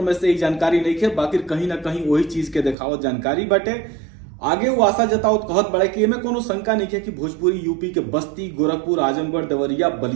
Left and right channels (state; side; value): drops out; left; at 2.8 s